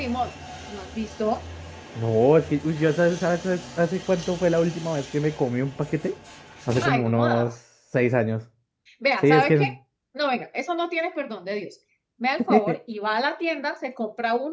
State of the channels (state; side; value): identical; both; correlation 1.00